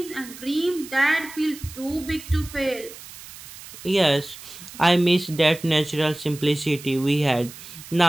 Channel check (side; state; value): right; noise; hiss, 16 dB below the sound